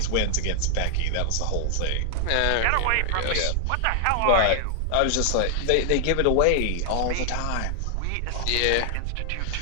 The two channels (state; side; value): different; both; correlation 0.00